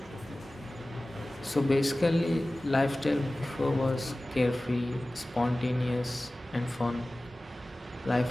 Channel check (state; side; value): normal; both; correlation 0.97